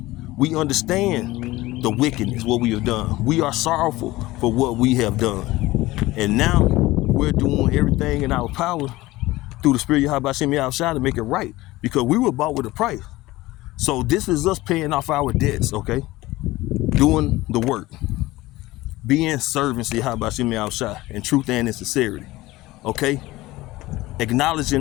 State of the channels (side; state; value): right; quieter; 18.6 dB